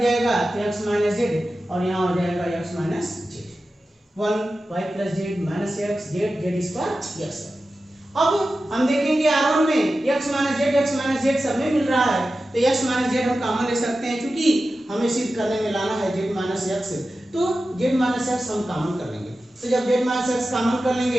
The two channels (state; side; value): normal; both; correlation 0.93